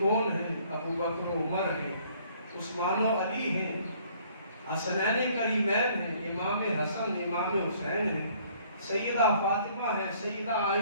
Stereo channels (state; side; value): inverted; both; correlation -0.60